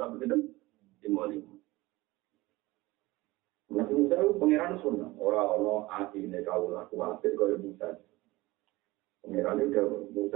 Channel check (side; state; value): left; quieter; 20.1 dB